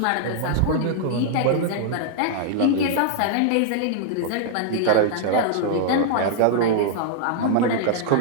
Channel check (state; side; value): different; both; correlation -0.01